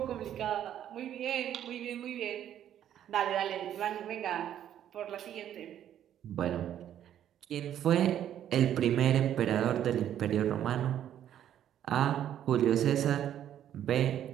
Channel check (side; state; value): left; quieter; 10.7 dB